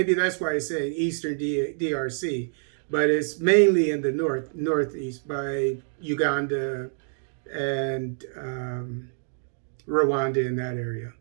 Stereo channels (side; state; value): left; silent; digital silence